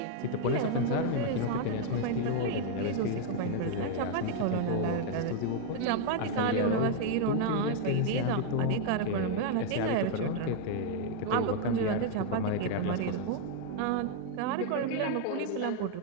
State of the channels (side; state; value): both; different; correlation 0.00